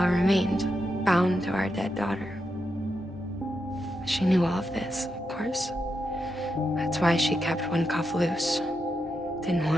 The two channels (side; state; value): both; normal; correlation 0.85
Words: remained, bound to our dead daughter. She knew all of this, of course. That's why she kept one cuff loose. Didn't